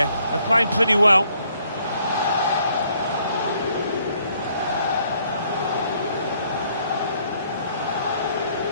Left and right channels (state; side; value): inverted; both; correlation -0.67